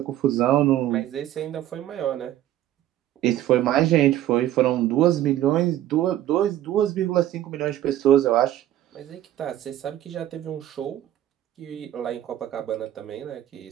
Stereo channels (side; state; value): left; quieter; 12.9 dB